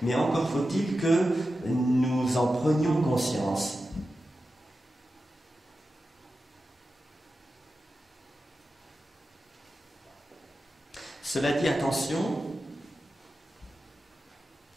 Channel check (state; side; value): normal; both; correlation 0.92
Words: encore faut-il que nous en prenions conscience. Cela dit, attention,